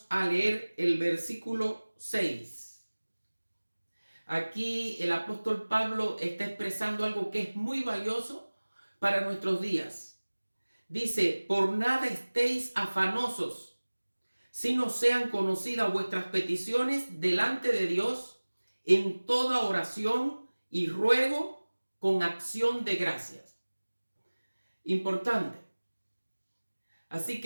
a leer el versículo 6. Aquí el apóstol Pablo está expresando algo que es muy valioso para nuestros días. Dice: por nada estéis afanosos, sino sean conocidas vuestras peticiones delante de Dios en toda oración y ruego con acción de gracias. Importante. Así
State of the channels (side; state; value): both; inverted; correlation -1.00